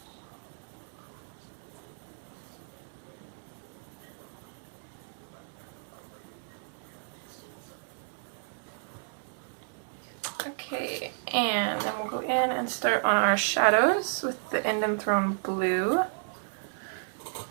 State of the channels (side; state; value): left; silent; digital silence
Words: Okay, and then we'll go in and start on our shadows with the Indian Throne Blue.